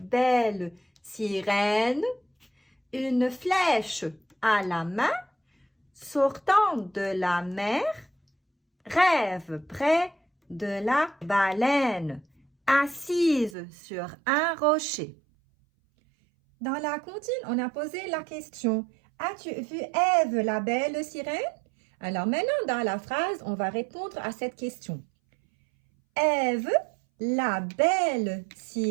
sirène? Une flèche à la main, sortant de la mer, rêve près de la baleine, assise sur un rocher. Dans la comptine, on a posé la question « As-tu vu Ève, la belle sirène ?» Alors maintenant, dans la phrase, on va répondre à cette question. Ève, la belle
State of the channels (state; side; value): drops out; left; at 13.6 s